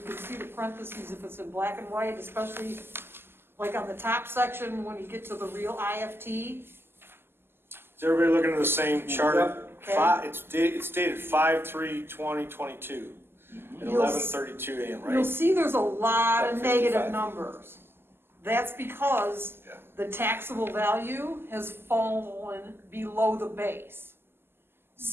see the parentheses if it's in black and white, especially like on the top section when you get to the real IFT. Is everybody looking at the same chart? Okay. It's dated 5/3/2022 at You'll 11:32 a.m., You'll right? see there's a lot of Like negative 55. numbers. That's because Yeah. the taxable value has fallen below the base.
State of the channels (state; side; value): late; left; 0.11 ms